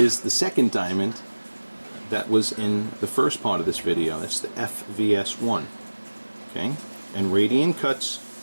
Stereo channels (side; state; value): both; inverted; correlation -1.00